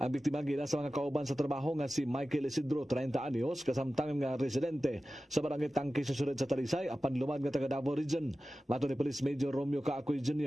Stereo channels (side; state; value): both; normal; correlation 0.95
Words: biktima gila sa mga kauban sa trabaho nga si Michael Isidro, 30 anyos, kasamtangan nga residente sa barangay Tangke sa Sured sa Talisay, apan lumad nga taga Davao Region. Mato ni Police Major Romeo Kaakoy